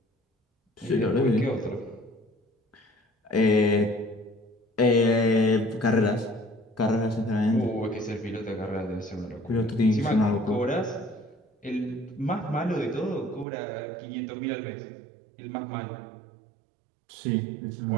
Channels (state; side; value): drops out; left; at 13.5 s